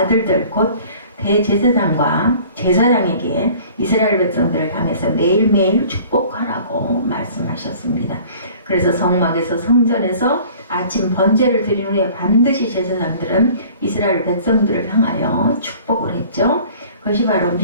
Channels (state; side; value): inverted; both; correlation -0.49